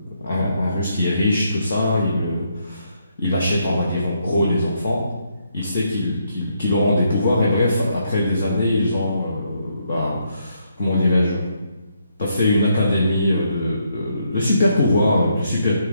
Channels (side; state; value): both; inverted; correlation -0.76